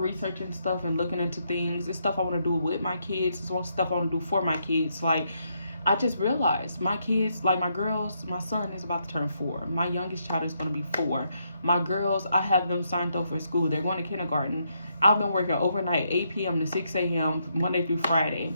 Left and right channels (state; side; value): inverted; both; correlation -0.77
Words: stuff and looking into things. It's stuff I want to do with my kids. It's stuff I want to do for my kids. Like, I just realized my kids, like my girls, my son is about to turn 4. My youngest child is going to be 4. My girls, I have them signed up for school. They're going to kindergarten. I've been working overnight, 8 p.m. to 6 a.m. Monday through Friday.